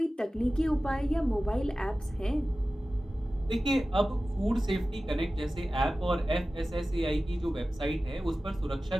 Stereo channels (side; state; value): both; normal; correlation 0.95